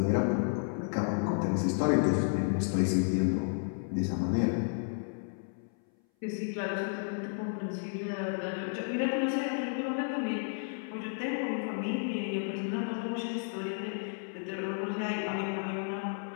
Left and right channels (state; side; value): silent; right; 56 dB below the other